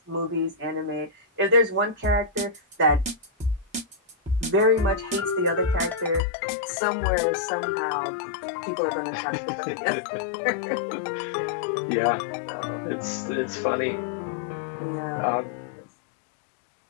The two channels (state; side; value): drops out; right; at 6.2 s